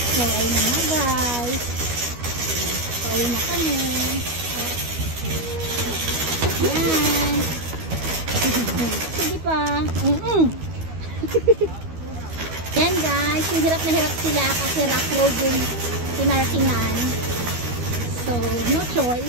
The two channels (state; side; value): late; left; 12 ms